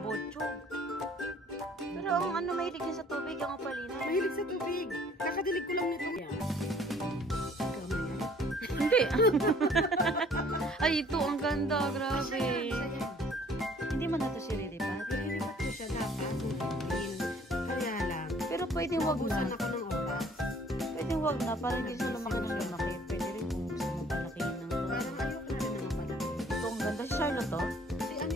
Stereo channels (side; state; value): both; normal; correlation 0.56